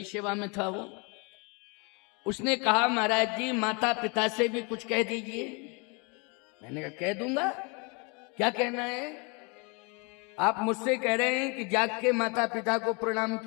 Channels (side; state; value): right; quieter; 31.6 dB